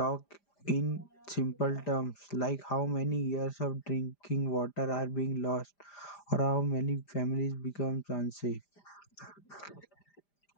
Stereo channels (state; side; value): late; right; 5.0 ms